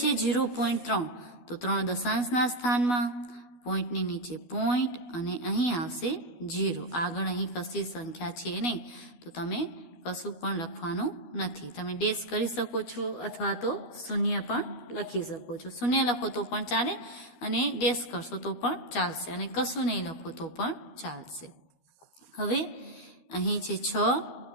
0.3, તો 3 દશાંશના સ્થાનમાં, પોઈન્ટની નીચે પોઈન્ટ અને અહીં આવશે 0. આગળ અહીં કશી સંખ્યા છે નહીં, તો તમે કશું પણ લખવાનું નથી. તમે ડેશ કરી શકો છો અથવા તો શૂન્ય પણ લખી શકો છો. શૂન્ય લખો તો પણ ચાલે અને ડેશ કરશો તો પણ ચાલશે, અને કશું નહીં લખો તો પણ ચાલશે. હવે અહીં છે 6,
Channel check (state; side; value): late; right; 12 ms